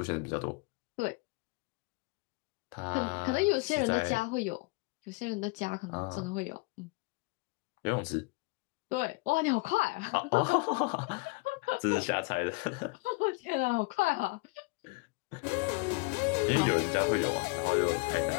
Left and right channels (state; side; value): quieter; right; 27.3 dB